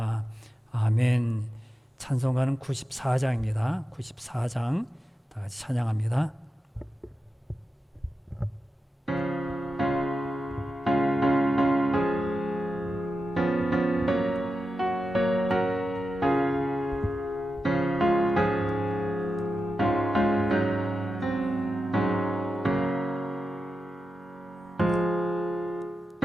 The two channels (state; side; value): normal; both; correlation 0.91